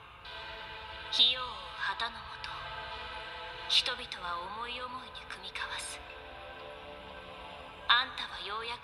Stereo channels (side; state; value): both; identical; correlation 1.00